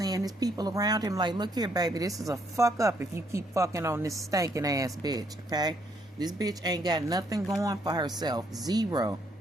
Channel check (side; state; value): both; normal; correlation 0.71